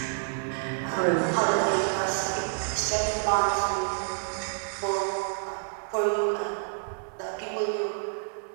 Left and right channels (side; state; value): left; silent; digital silence